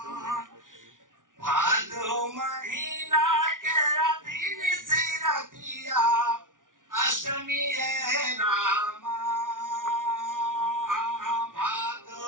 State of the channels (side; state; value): left; late; 0.88 ms